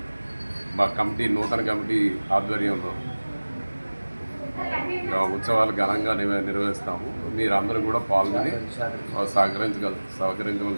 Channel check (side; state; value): both; inverted; correlation -1.00